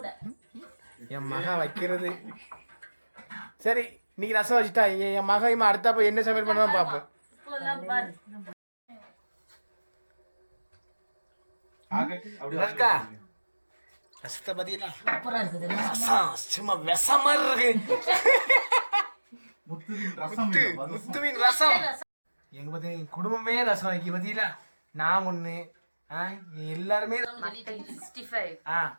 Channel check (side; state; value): both; inverted; correlation -1.00